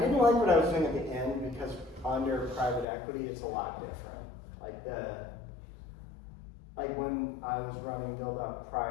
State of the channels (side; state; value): right; drops out; at 2.9 s